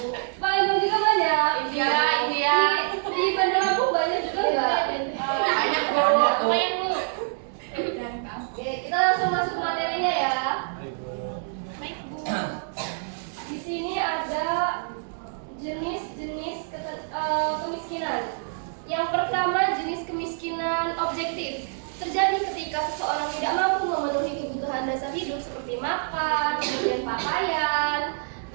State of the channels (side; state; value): left; silent; digital silence